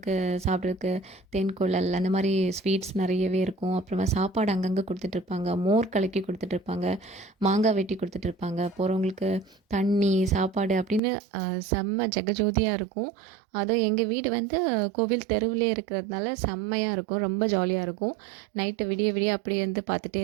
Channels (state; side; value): drops out; left; at 11.0 s